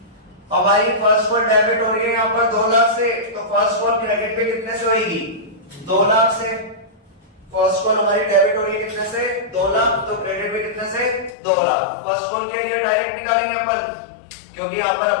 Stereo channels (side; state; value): right; drops out; at 11.4 s